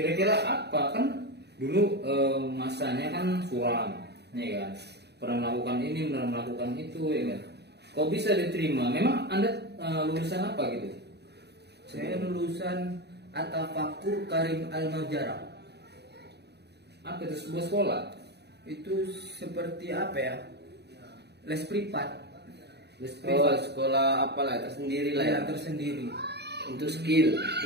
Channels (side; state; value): left; late; 0.48 ms